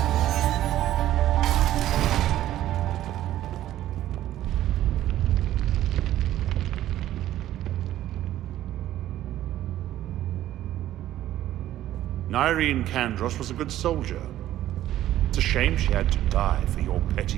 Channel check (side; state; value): left; quieter; 13.2 dB